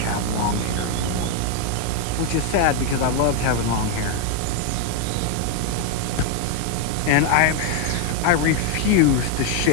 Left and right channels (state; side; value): different; both; correlation 0.01